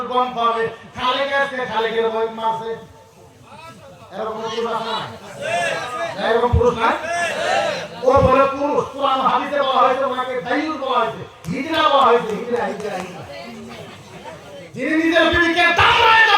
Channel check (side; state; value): both; identical; correlation 1.00